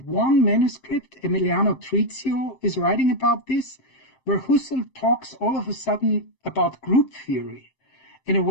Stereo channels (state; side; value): late; right; 7.6 ms